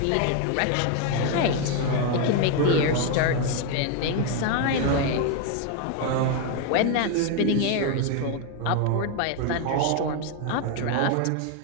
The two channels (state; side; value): different; both; correlation 0.01